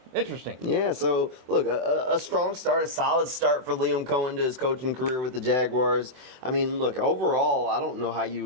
Interesting. Yeah, so look, a strong start, a solid start for Liam Coen to his coaching career with the Jaguars. I mean, look, overall, I don't know how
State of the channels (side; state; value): left; late; 23 ms